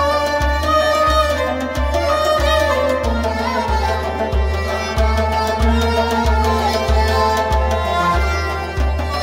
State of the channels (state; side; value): identical; both; correlation 1.00